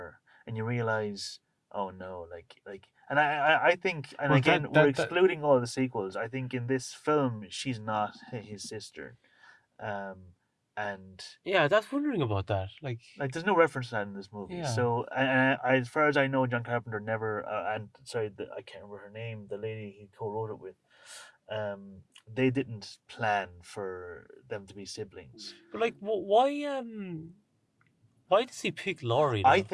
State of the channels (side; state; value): both; identical; correlation 1.00